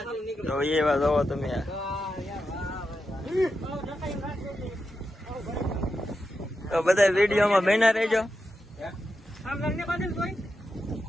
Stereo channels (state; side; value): normal; both; correlation 0.88